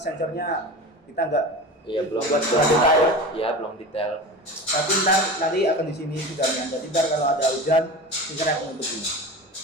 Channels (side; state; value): both; normal; correlation 0.31